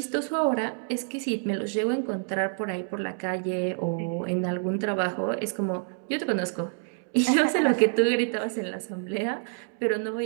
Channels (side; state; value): left; silent; digital silence